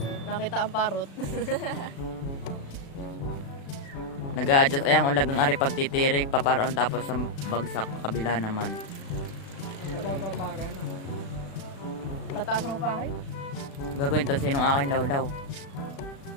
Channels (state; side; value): late; right; 36 ms